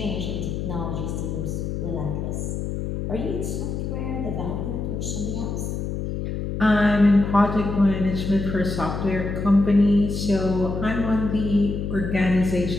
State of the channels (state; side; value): noise; left; hum, 3 dB below the sound